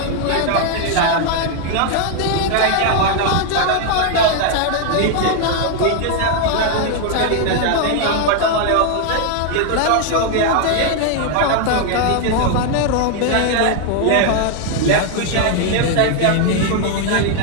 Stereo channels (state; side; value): different; both; correlation 0.00